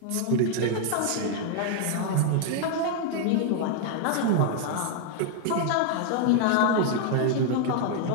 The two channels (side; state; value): both; different; correlation 0.00